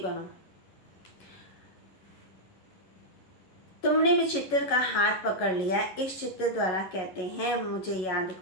तुमने भी चित्र का हाथ पकड़ लिया, इस चित्र द्वारा कहते हैं मुझे याद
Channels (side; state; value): right; late; 11 ms